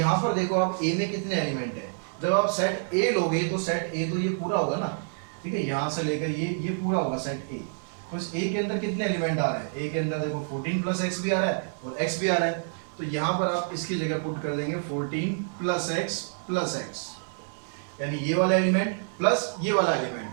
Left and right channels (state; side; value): silent; left; digital silence